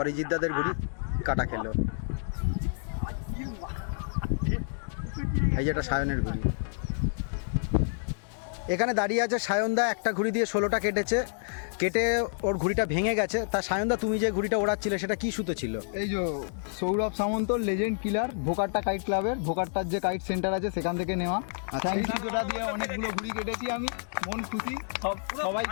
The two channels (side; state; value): right; silent; digital silence